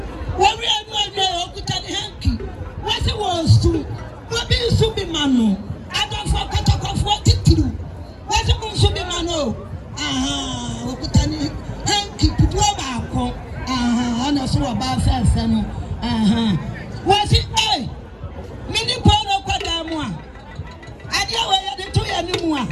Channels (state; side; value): identical; both; correlation 1.00